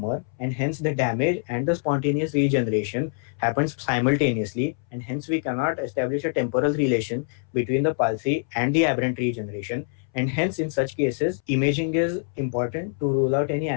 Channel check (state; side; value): silent; right; 62 dB below the other